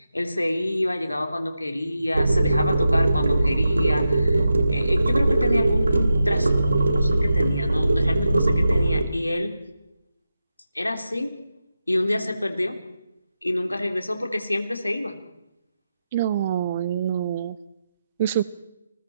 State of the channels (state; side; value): inverted; both; correlation -0.89